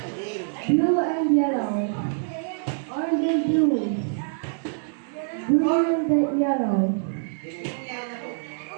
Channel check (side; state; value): left; silent; digital silence